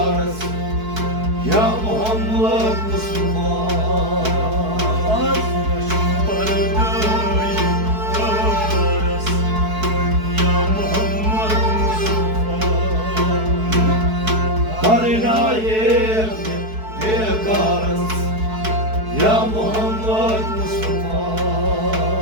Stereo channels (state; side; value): late; left; 4.6 ms